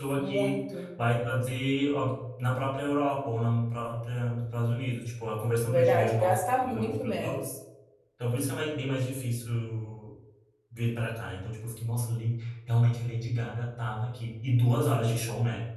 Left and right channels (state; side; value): identical; both; correlation 1.00